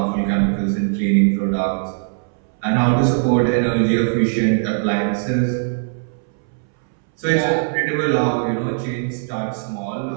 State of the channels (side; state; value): left; silent; 64 dB below the other